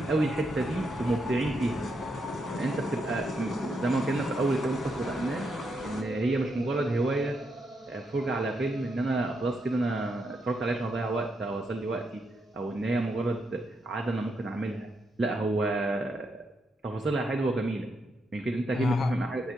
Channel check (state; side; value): normal; both; correlation 0.80